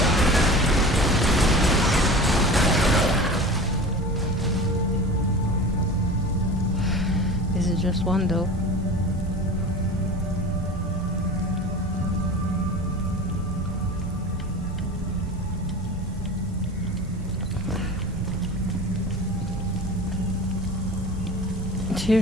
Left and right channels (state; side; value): normal; both; correlation 0.35